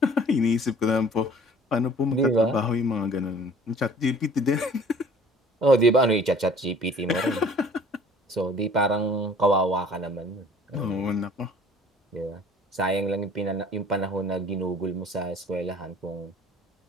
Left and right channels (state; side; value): normal; both; correlation 0.51